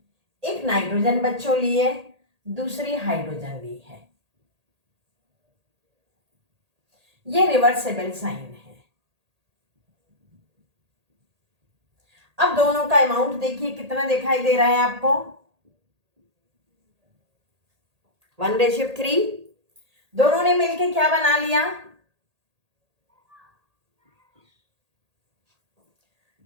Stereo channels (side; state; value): left; late; 1.8 ms